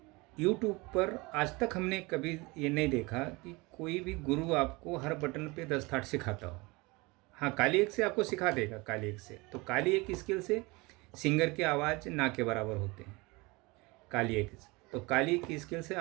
YouTube पर आज तक हमने कभी ये नहीं देखा कि कोई भी गुरु आपको हर बटन पे 10 थाट सिखाता हो। हाँ, काली एक से आपको सिखा देगा, काली एक से। तो काली एक स्किल से सिंगर की आवाज़ ना के बराबर होते हैं, काली एक से। तो काली एक स्किल से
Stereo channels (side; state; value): left; quieter; 24.6 dB